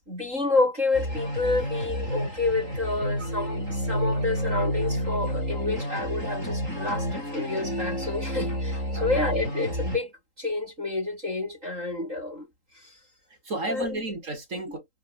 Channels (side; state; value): left; late; 3.8 ms